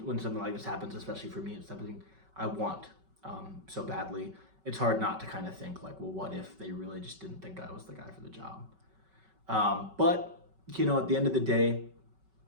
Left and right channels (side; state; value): left; late; 5.3 ms